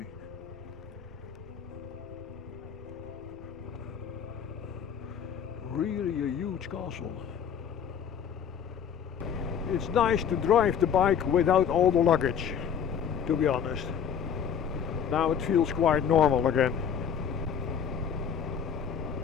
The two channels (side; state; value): right; quieter; 7.9 dB